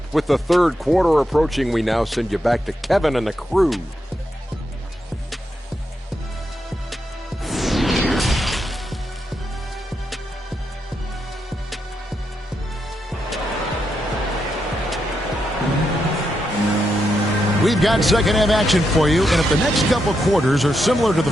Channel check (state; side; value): normal; both; correlation 0.83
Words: With the third quarter approaching, we now send you back to Kevin and the crew. We've got second half action for you, and if the next couple quarters are similar to